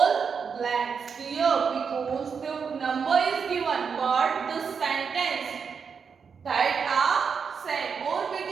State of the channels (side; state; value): left; quieter; 6.1 dB